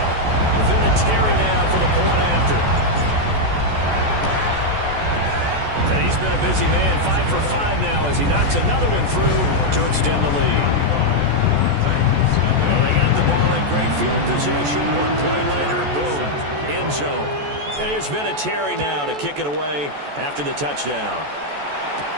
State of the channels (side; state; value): left; late; 14 ms